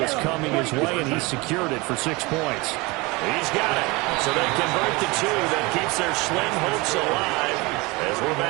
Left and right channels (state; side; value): quieter; left; 24.6 dB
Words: coming his way, and he secured it for 6 points. He's got it. So they convert the 2 that keeps their slim hopes alive as we're